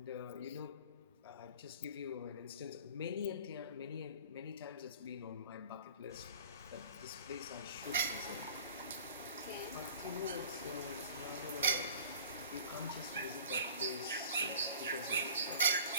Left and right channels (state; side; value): inverted; both; correlation -0.45